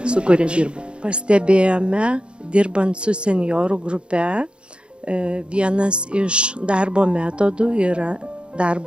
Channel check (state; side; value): late; left; 0.056 ms